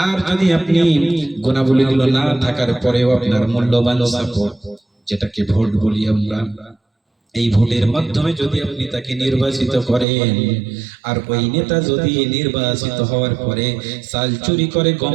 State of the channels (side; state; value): left; drops out; at 10.1 s